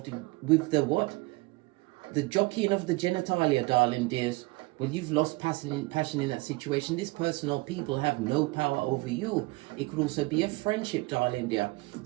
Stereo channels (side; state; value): left; quieter; 23.8 dB